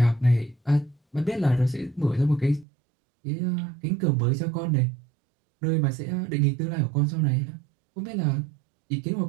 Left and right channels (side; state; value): left; drops out; at 2.7 s